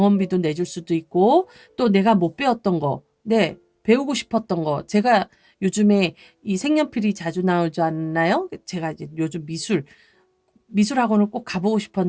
내줄 수도 있고 또 내가 못 배웠던 거, 배우고 싶었던 거 제가 요즘에 이 색연필이 자주 나오지 않나요? 제가 이제 요즘 미술학원을 꼭 가보고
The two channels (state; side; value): identical; both; correlation 1.00